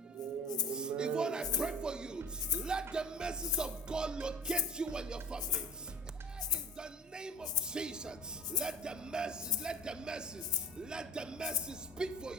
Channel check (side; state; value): both; normal; correlation 0.39